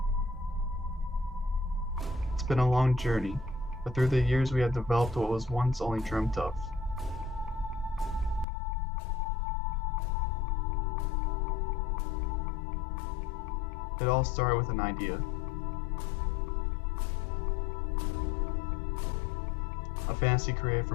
It's been a long journey, but through the years we have developed what was once only dreamt of. It all started with an idea. A fantasy created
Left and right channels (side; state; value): right; drops out; at 8.5 s